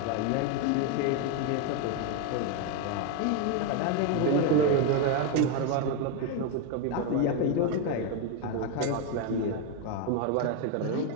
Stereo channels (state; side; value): different; both; correlation 0.02